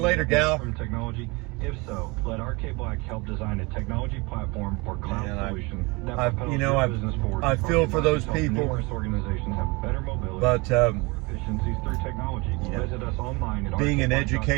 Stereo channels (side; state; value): left; quieter; 26.2 dB